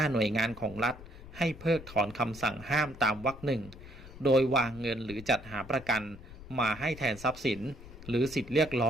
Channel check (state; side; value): noise; left; rumble, 16 dB below the sound